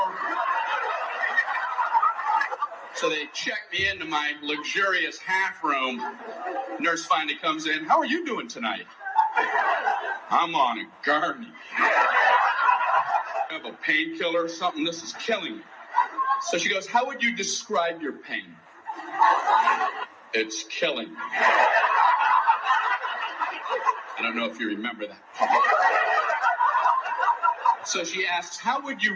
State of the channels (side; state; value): both; identical; correlation 1.00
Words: So they check me into my luxurious half room. Nurse finally comes in. How are you doing tonight? I'm on a gurney. I have a painkiller or something. This is killing me. So she goes, how would you describe your pain? It's killing me. I don't know if you remember that. So she asks, how would you